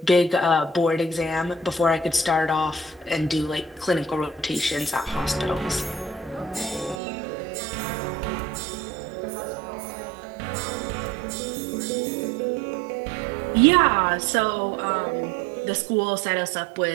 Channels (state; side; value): drops out; left; at 7.0 s